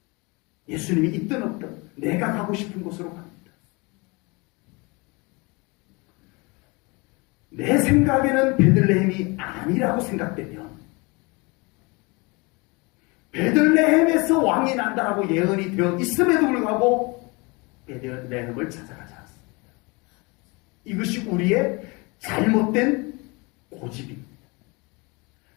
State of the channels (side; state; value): right; quieter; 27.3 dB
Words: 예수님이 있든 없든 내가 가고 싶은 곳으로 갑니다. 내 생각에는 베들레헴이 아니라고 생각되면 베들레헴에서 왕이 난다라고 예언이 되어 있음에도 불구하고 베들레헴을 찾아가지 않습니다. 이것이 우리의 잘못된 고집입니다.